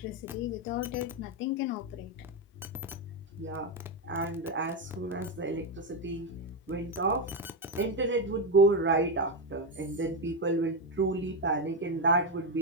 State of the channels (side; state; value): both; normal; correlation 0.08